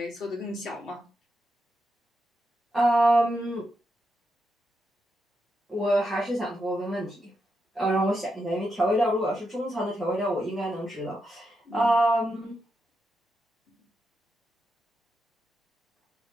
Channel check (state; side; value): normal; both; correlation 0.85